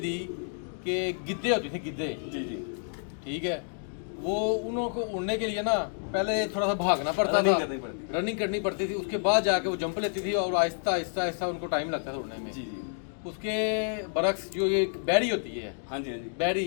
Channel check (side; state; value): right; silent; digital silence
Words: कि गिद्धे होते थे, गिद्धे। जी जी ठीक है, वो उनको उड़ने के लिए ना पहले थोड़ा सा भागना पड़ता था, रनिंग करनी पड़ती थी, उसके बाद जाके वो जंप लेती थी और आहिस्ता आहिस्ता आहिस्ता उनको टाइम लगता था उड़ने में। जी जी। उसके बरक्स जो ये बैरी होती है, हाँ जी हाँ जी, बैरी